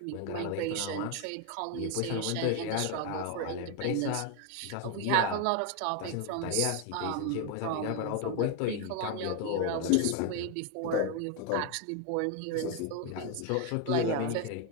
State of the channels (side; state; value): both; different; correlation 0.01